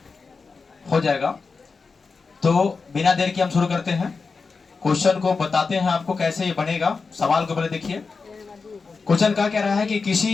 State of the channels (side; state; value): right; quieter; 4.6 dB